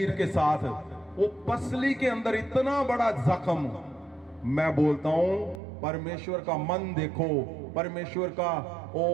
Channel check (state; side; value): drops out; left; at 5.6 s